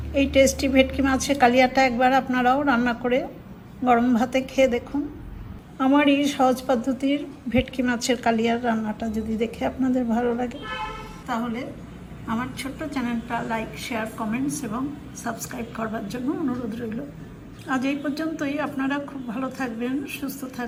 এই টেস্টি ভেটকি মাছের কালিয়াটা একবার আপনারাও রান্না করে গরম ভাতে খেয়ে দেখুন। আমার এই সহজ পদ্ধতির ভেটকি মাছের কালিয়ার রান্নাটা যদি দেখে আপনাদের ভালো লাগে, তাহলে আমার ছোট্ট চ্যানেলটা লাইক, শেয়ার, কমেন্টস এবং সাবস্ক্রাইব করবার জন্য অনুরোধ রইল। আজ এই পর্যন্তই। আপনারা খুব ভালো থাকবেন, সুস্থ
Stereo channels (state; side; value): identical; both; correlation 1.00